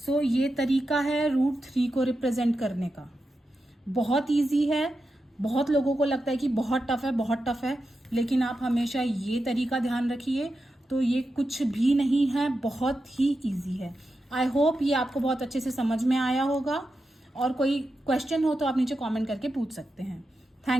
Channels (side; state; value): both; normal; correlation 0.89